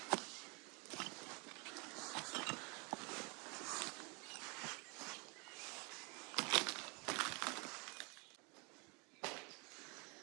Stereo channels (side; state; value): left; quieter; 31.0 dB